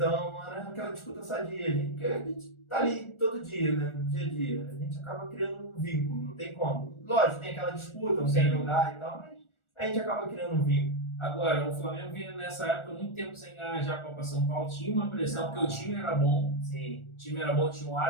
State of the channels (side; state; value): right; late; 1.4 ms